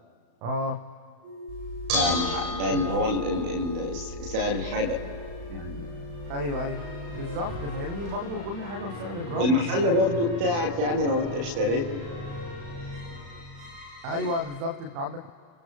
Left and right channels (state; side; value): late; left; 35 ms